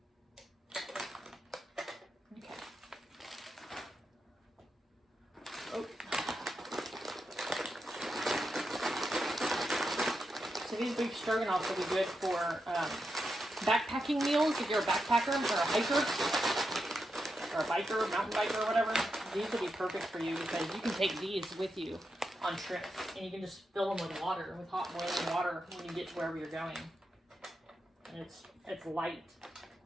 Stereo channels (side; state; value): both; normal; correlation 0.86